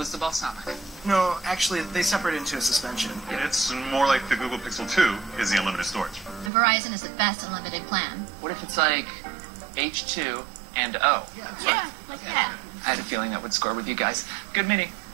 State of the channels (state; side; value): drops out; left; at 6.5 s